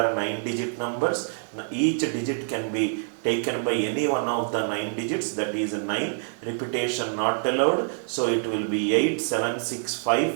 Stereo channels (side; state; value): left; silent; digital silence